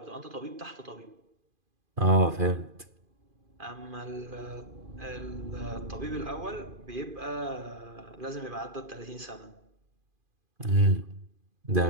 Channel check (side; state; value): left; late; 2.5 ms